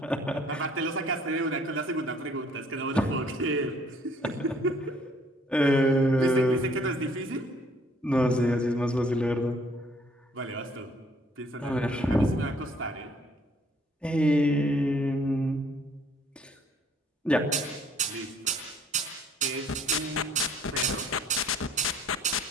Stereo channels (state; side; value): normal; both; correlation 0.60